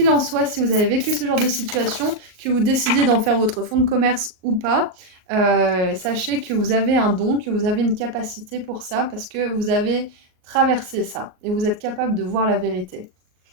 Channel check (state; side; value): late; left; 38 ms